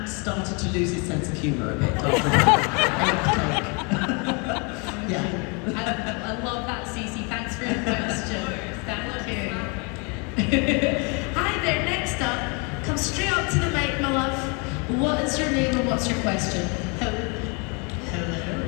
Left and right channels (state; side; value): quieter; right; 32.7 dB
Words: started to lose his sense of humour a bit after that. Yeah. I love that, Cece. Thanks for your question. Thank you. Hi there. Next up, come straight up to the mic, my love. What is your name and what's your question? Hello.